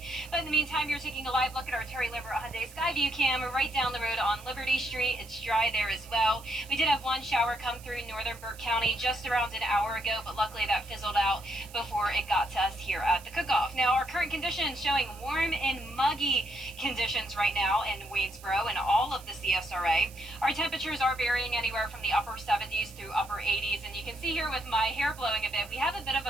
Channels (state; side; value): noise; right; hiss, 20 dB below the sound